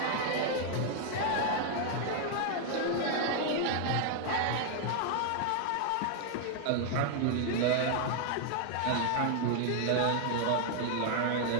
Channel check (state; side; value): different; both; correlation 0.00